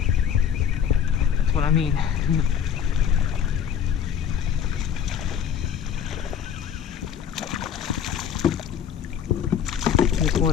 That's what I mean. This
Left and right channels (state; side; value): quieter; right; 8.2 dB